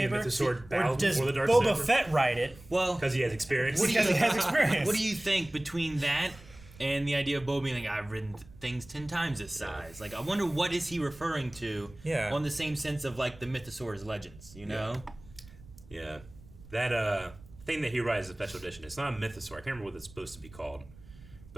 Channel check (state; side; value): noise; right; rumble, 21 dB below the sound